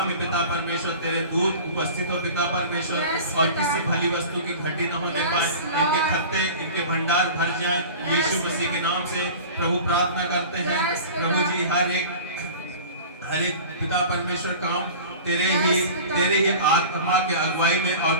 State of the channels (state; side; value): inverted; both; correlation -0.38